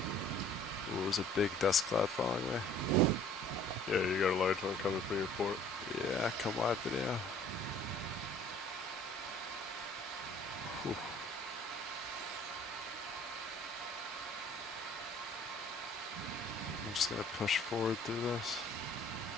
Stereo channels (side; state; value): both; normal; correlation 0.53